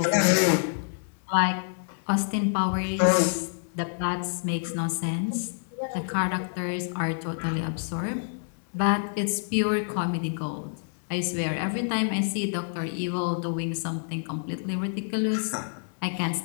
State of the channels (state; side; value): silent; right; digital silence